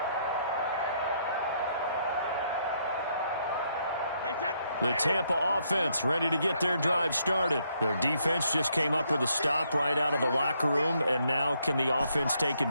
The Tampa offense ready to get their drive started. Their defense just came up with a stop right out of the locker room, and now can the offense take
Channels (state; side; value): inverted; both; correlation -0.73